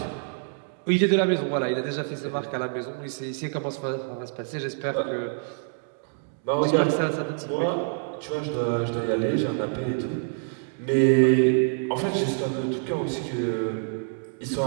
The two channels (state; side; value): silent; left; digital silence